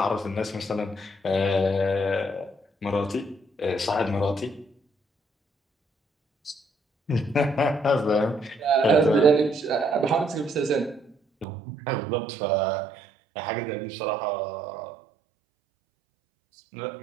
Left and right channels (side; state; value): left; drops out; at 11.5 s